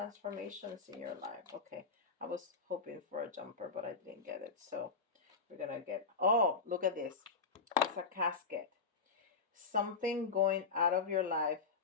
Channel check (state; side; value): quieter; right; 4.6 dB